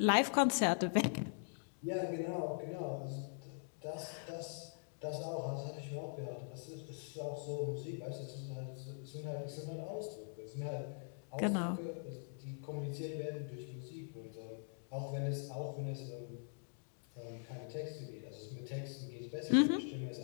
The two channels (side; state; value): right; silent; digital silence